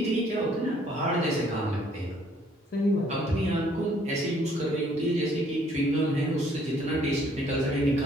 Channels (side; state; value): both; normal; correlation 0.63